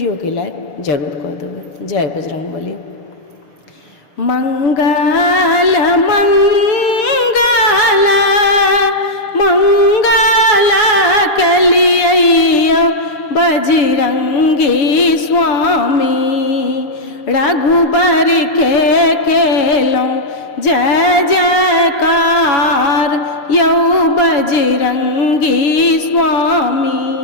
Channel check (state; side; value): late; right; 6.7 ms